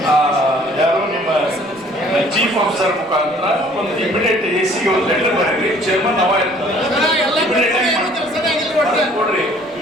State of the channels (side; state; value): left; noise; rumble, 30 dB below the sound